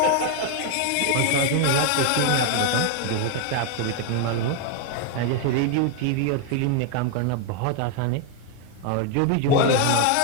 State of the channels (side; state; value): both; different; correlation 0.00